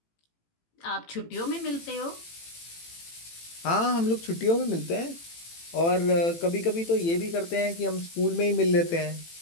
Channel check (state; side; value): late; right; 18 ms